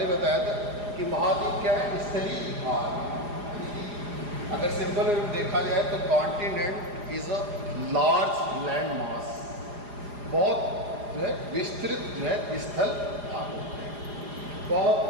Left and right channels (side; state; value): left; late; 4.9 ms